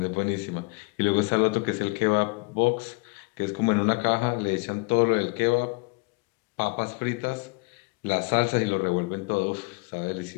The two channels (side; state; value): right; quieter; 27.8 dB